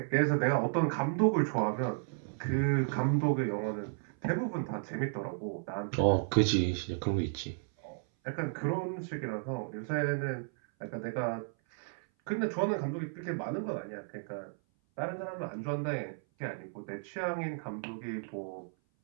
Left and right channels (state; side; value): silent; left; 55 dB below the other